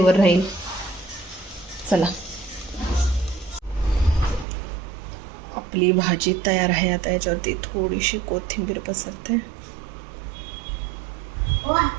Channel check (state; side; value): drops out; left; at 4.5 s